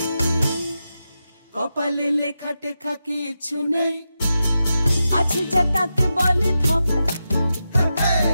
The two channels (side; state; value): both; inverted; correlation -0.90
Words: কপালে লেখা টেখা কিছু নেই, আছে যা তাকে বলে ধপ।